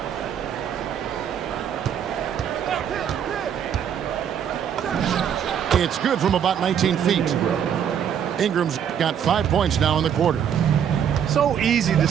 It's good from about 19 feet. Ingram's got 5 points now in the quarter. So easy to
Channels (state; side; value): quieter; left; 8.7 dB